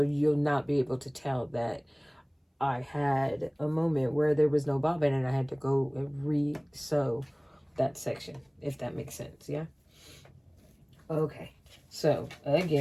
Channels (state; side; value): identical; both; correlation 1.00